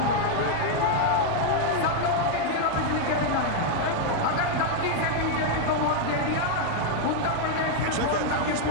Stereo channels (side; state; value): both; different; correlation 0.00